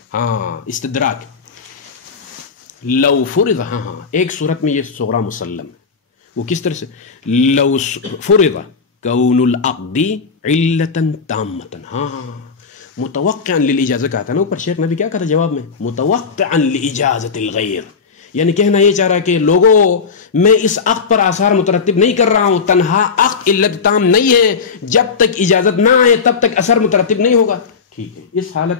ہاں, استدراک. لو فرض, ہاں, ایک صورت میں یہ صغرا مسلم ہے. وہ کس طرح سے؟ لو فرض کون العقد علتا تامتا, ہاں, متوقعا للاجازہ کہا تھا نا اوپر. شیخ نے بھی کیا کہا تھا جواب میں؟ متوقعا لاجازت الغیر. یعنی کہنا یہ چاہ رہا کہ لوگوں میں اس عقد پر آثار مترتب نہیں کر رہا ہوں, تنہا عقد علت تام نہیں ہے, جب تک اجازت نہ آئے تب تک اثر مترتب نہیں ہوگا. ٹھیک ہے, اس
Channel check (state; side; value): quieter; right; 5.4 dB